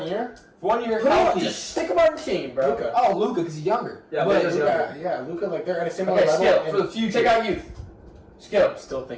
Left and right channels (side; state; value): both; identical; correlation 1.00